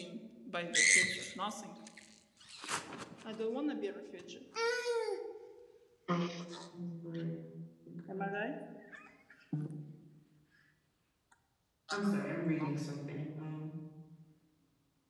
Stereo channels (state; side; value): identical; both; correlation 1.00